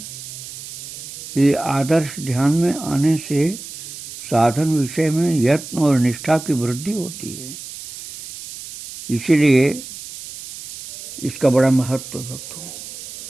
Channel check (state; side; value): noise; right; hiss, 12 dB below the sound